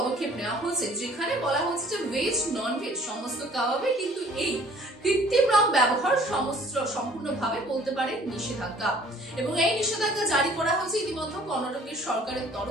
নেওয়া হয়েছে, যেখানে বলা হচ্ছে যে ভেজ নন ভেজ সমস্ত কাবাবে কিন্তু এই কৃত্রিম রং ব্যবহার সম্পূর্ণভাবে বলতে পারে নিষেধাজ্ঞা। এবং এই নিষেধাজ্ঞা জারি করা হয়েছে ইতিমধ্যে কর্ণাটকের সরকারের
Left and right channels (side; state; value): both; normal; correlation 0.55